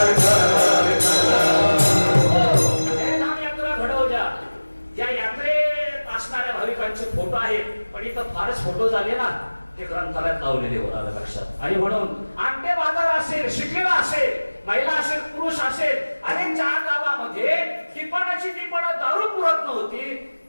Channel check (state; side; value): inverted; both; correlation -1.00